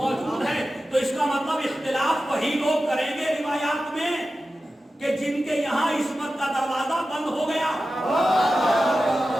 ہے۔ تو اس کا مطلب اختلاف وہی لوگ کریں گے روایات میں کہ جن کے یہاں عصمت کا دروازہ بند ہو گیا،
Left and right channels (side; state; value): both; normal; correlation 0.93